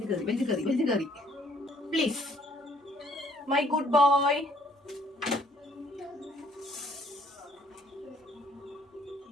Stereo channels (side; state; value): both; normal; correlation 0.63